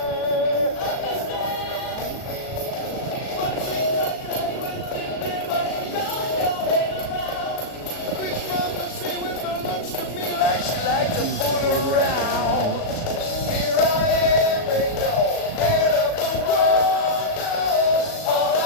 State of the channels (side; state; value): right; late; 37 ms